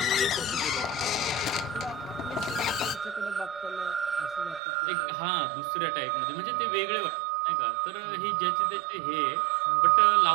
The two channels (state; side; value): drops out; left; at 4.6 s